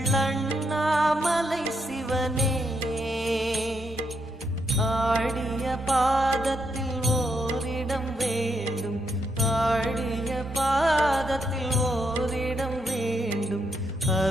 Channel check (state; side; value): normal; both; correlation 0.79